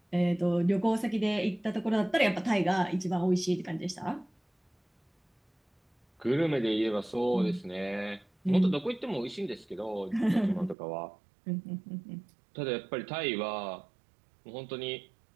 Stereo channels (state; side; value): drops out; left; at 10.8 s